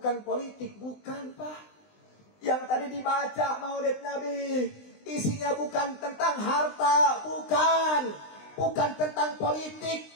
politik, bukan Pak. Yang tadi dibaca Maulid Nabi isinya bukan tentang harta, bukan tentang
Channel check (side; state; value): right; late; 20 ms